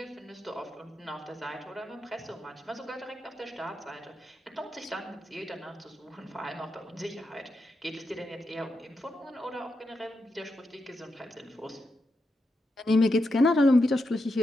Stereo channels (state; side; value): normal; both; correlation 0.86